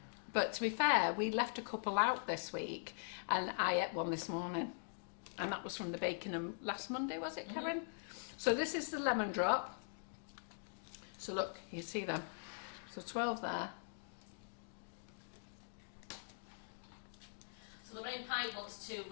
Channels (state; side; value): silent; right; digital silence